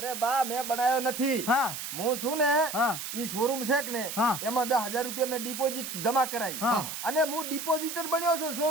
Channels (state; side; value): noise; right; hiss, 7 dB below the sound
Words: બા મેં બનાવ્યો નથી હા હું છું ને હા. ઈ શોરૂમ છે કે ને હા. એમાં 10,000 રૂપિયા મેં ડિપોઝિટ જમા કરાવી હા. અને હું ડિપોઝિટર બન્યો છું